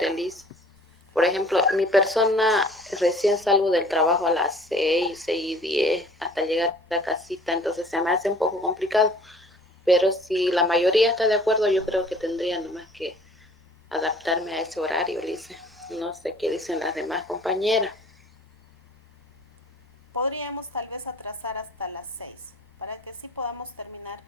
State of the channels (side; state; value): both; normal; correlation 0.51